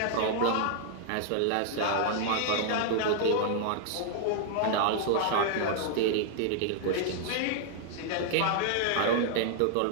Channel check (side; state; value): both; different; correlation -0.01